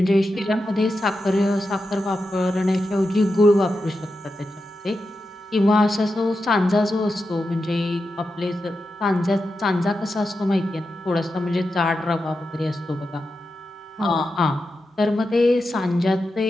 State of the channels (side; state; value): both; normal; correlation 0.89